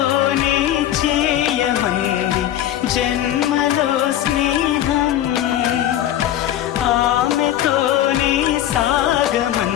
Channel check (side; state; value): right; quieter; 12.2 dB